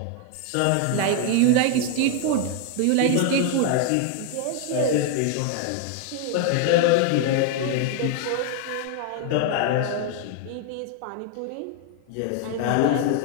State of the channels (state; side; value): different; both; correlation 0.00